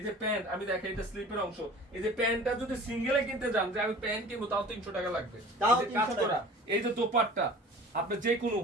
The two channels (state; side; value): normal; both; correlation 0.43